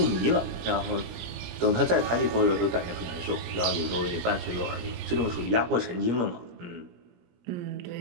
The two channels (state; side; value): late; left; 17 ms